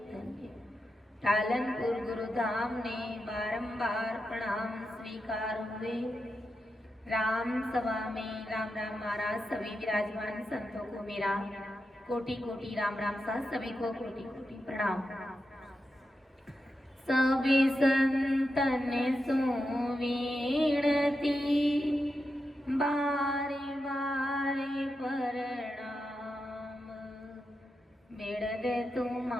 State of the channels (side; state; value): both; normal; correlation 0.88